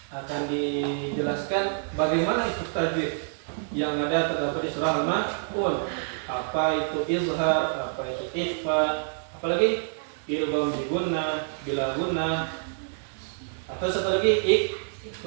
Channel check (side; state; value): left; silent; digital silence